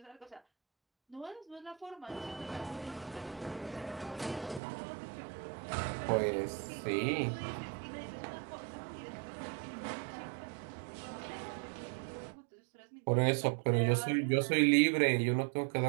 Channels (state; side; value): drops out; left; at 4.6 s